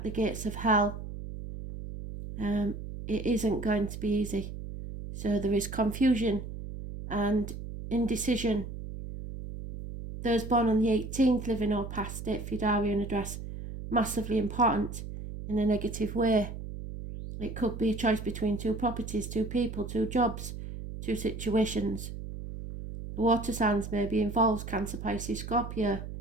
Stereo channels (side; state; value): right; noise; hum, 9 dB below the sound